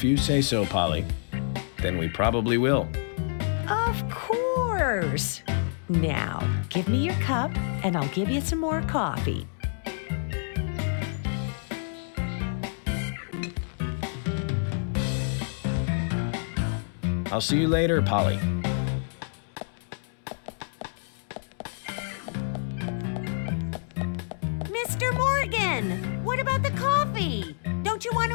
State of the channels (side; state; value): right; silent; digital silence